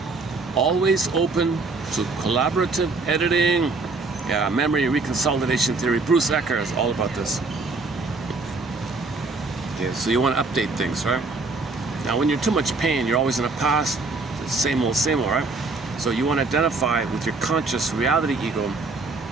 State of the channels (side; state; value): left; quieter; 3.7 dB